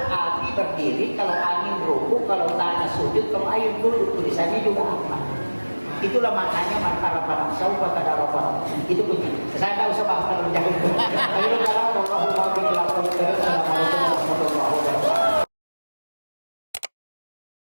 api berdiri, kalau angin ruku, kalau tanah sujud, kalau air duduk. Tulisannya juga Ahmad. Itulah maknanya man arafa nafsahu faqad arafa rabbah. Itu kunci. Saya tak usah bahas terlalu jauh.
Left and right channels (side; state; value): both; inverted; correlation -1.00